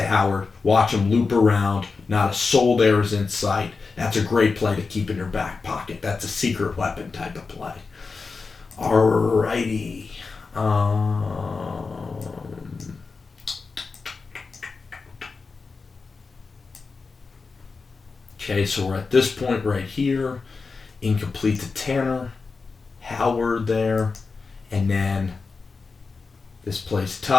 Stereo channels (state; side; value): quieter; right; 4.5 dB